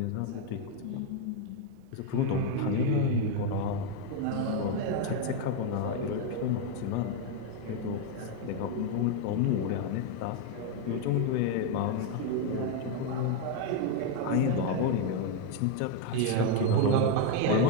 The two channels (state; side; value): different; both; correlation 0.01